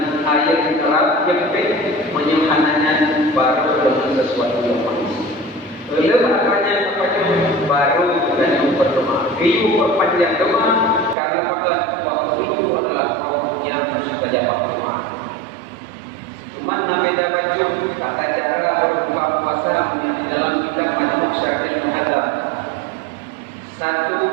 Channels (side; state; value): left; drops out; at 11.2 s